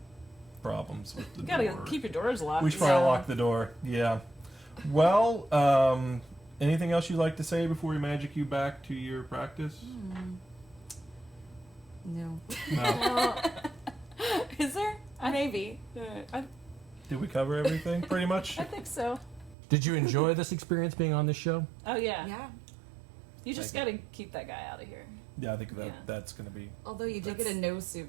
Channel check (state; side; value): drops out; left; at 19.6 s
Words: problems with the You gotta door. keep your doors locked. We should probably Yeah. lock the door. Yeah. Well, anything else you'd like to say before we magic you back to your practice? No. No. Is there? Maybe. Did we cover everything? Pretty much. I think so. Did you enjoy this experience being on this show? Oh yeah. Yeah. You just gotta keep that guy out of here. Yeah, I think Yeah. that's going to be. Although you did get a nose